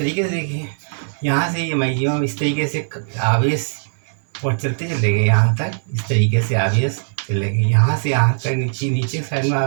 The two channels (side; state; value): left; silent; digital silence